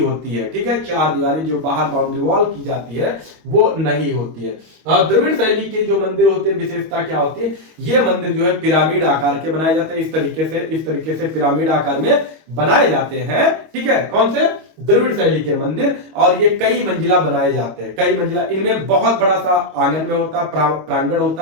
है, ठीक है, चार दीवारी जो बाहर बाउंड्री वॉल की जाती है वो नहीं होती है। और द्रविड़ शैली के जो मंदिर होते हैं, विशेषता क्या होती है, ये मंदिर जो है पिरामिड आकार के बनाए जाते हैं, इस तरीके से पिरामिड आकार में बनाए जाते हैं, ठीक है। कौन से, द्रविड़ शैली के मंदिर, और ये कई मंजिला बनाए जाते हैं, कई मंजिला। इनमें बहुत बड़ा सा आंगन में होता है, प्रांगण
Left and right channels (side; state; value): left; late; 25 ms